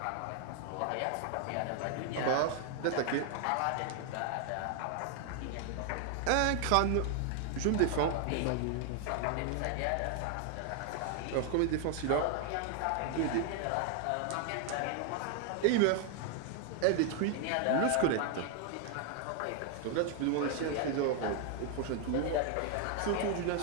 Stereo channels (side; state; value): both; different; correlation 0.00